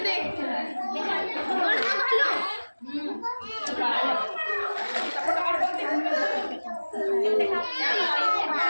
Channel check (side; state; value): both; inverted; correlation -1.00